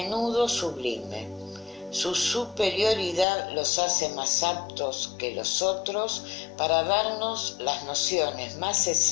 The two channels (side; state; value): right; drops out; at 3.2 s